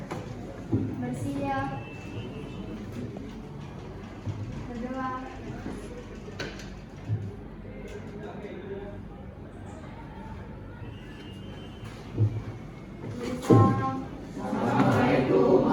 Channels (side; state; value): both; identical; correlation 1.00